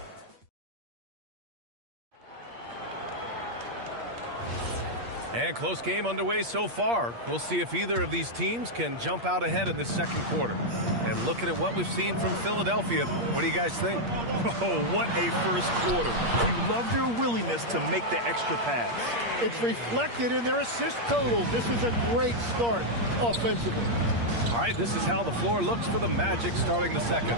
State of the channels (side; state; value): left; late; 8.5 ms